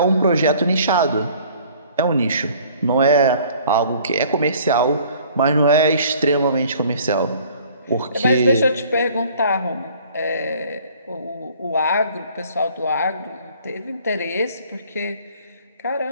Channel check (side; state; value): both; inverted; correlation -0.54